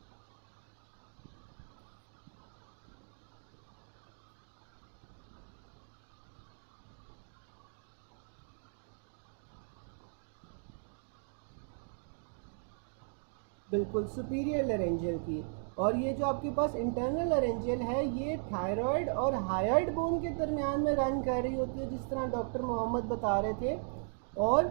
बिल्कुल सुपीरियर लेरेंजियल की। और ये जो आपके पास इंटरनल लेरेंजियल है ये थायराइड और हायोइड बोन के दरमियान में रन कर रही होती है, जिस तरह डॉक्टर मोहम्मद बता रहे थे। और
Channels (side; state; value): left; silent; digital silence